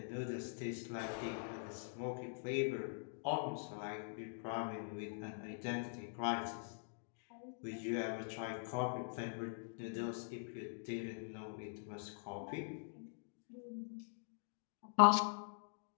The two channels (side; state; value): right; silent; digital silence